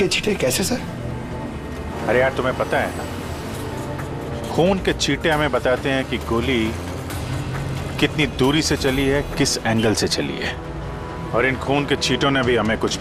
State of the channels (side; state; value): both; identical; correlation 1.00